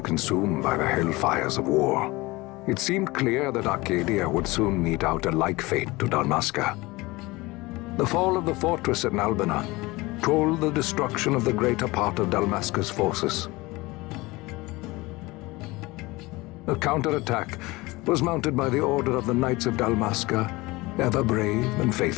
consumed by the hellfires of war, it seemed clear that Archadia would soon mete out a like fate to Dalmasca. The fall of the fortress at Nalbina told the destruction of the greater part of Dalmasca's forces. A counterattack was mounted by the order of the Knights of Dalmasca, ever brave and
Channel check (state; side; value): quieter; right; 21.9 dB